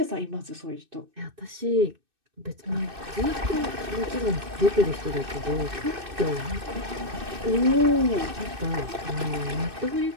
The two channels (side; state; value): left; late; 2.6 ms